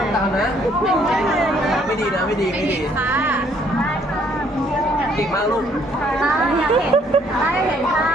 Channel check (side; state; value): both; normal; correlation 0.65